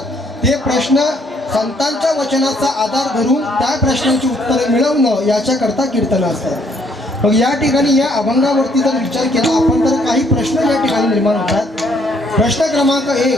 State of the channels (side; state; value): both; normal; correlation 0.67